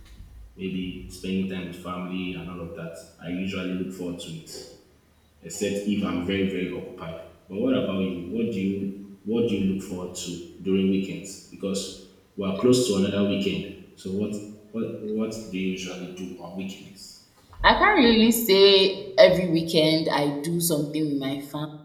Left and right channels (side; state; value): both; identical; correlation 1.00